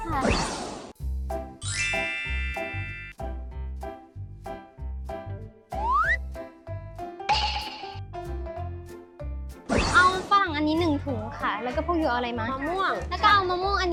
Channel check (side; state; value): both; identical; correlation 1.00